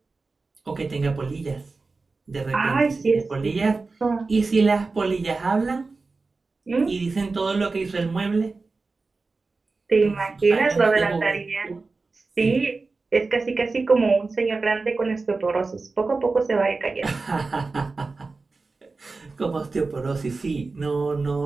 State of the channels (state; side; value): quieter; left; 3.9 dB